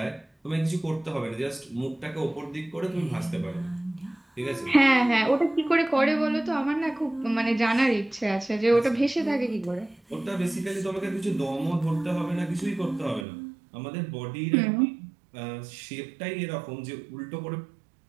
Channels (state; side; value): drops out; left; at 13.2 s